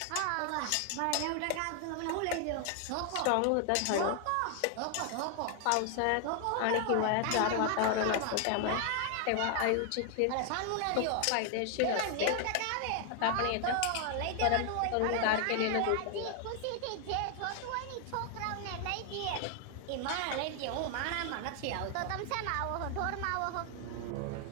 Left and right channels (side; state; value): both; different; correlation 0.00